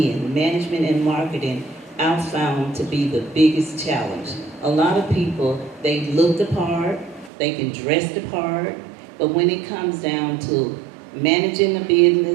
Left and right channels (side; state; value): left; drops out; at 7.3 s